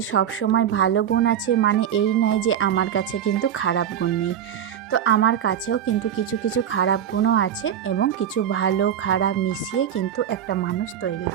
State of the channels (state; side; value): quieter; left; 9.6 dB